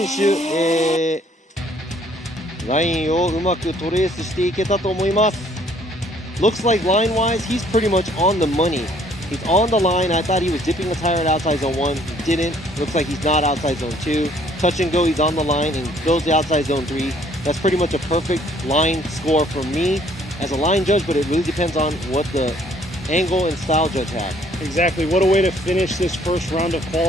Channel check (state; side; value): normal; both; correlation 0.61